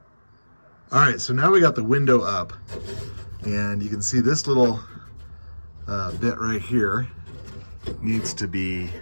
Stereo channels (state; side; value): inverted; both; correlation -1.00